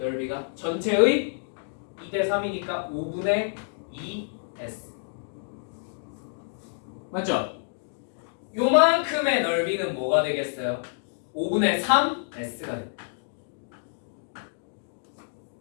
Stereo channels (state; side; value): silent; right; digital silence